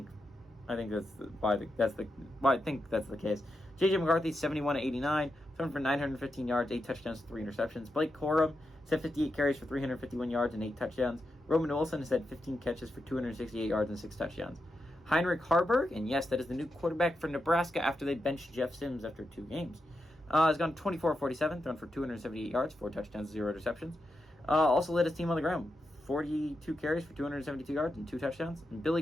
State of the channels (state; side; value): normal; both; correlation 0.87